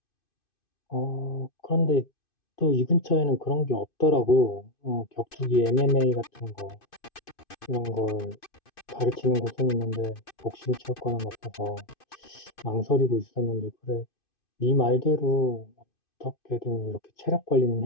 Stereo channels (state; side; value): late; right; 2.5 ms